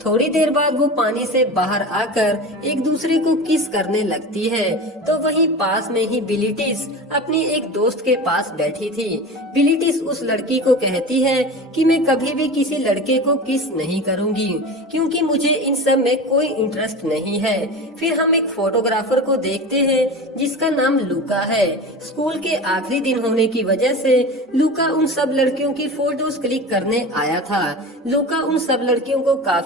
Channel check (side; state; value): both; normal; correlation 0.31